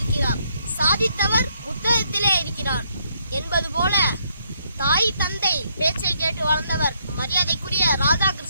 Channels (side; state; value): both; inverted; correlation -0.72